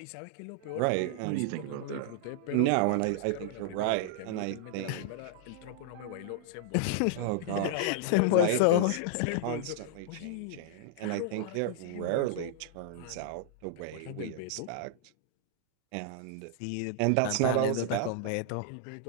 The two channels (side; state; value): both; different; correlation -0.01